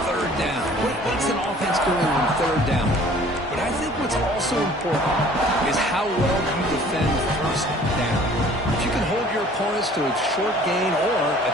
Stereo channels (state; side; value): normal; both; correlation 0.52